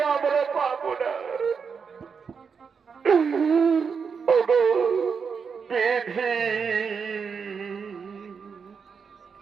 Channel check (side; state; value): left; quieter; 6.0 dB